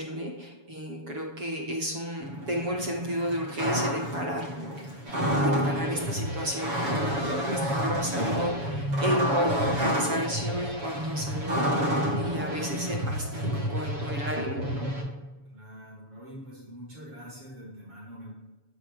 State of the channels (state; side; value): late; left; 7.1 ms